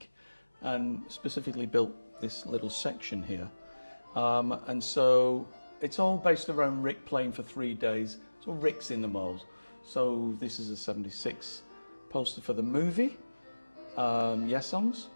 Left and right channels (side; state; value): both; inverted; correlation -1.00